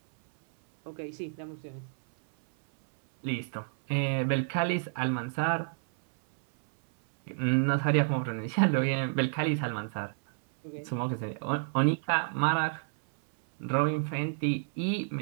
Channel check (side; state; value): left; silent; 58 dB below the other